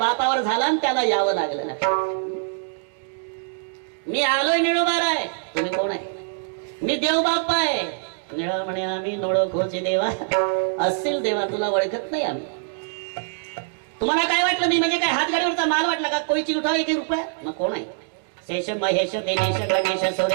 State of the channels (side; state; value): left; silent; digital silence